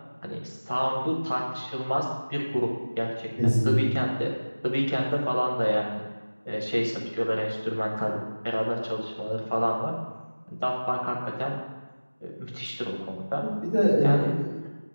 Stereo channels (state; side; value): inverted; both; correlation -1.00